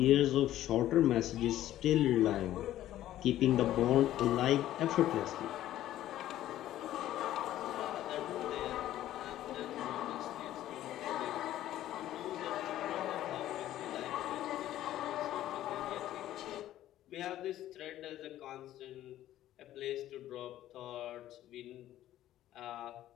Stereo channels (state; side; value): quieter; right; 13.3 dB